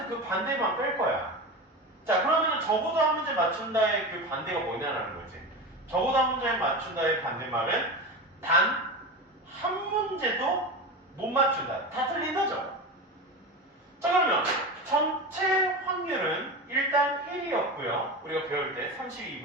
그 반대만 뺄 거야. 자, 그러면 적어도 한 문제 맞춘다의 그 반대가 뭐냐라는 거지. 적어도 한 문제 맞춘다의 반대말은 단 한 문제도 못 맞춘다. 다 틀린 거죠. 자, 그러면 전체 확률은 일단 1이었고요. 우리가 배울 때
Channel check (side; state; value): both; normal; correlation 0.25